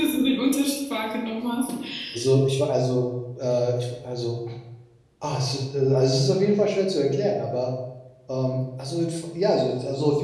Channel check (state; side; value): identical; both; correlation 1.00